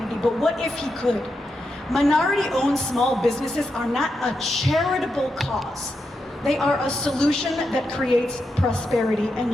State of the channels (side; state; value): both; normal; correlation 0.86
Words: But what if he could? Minority-owned small businesses are not a charitable cause. They are a solution that creates prosperity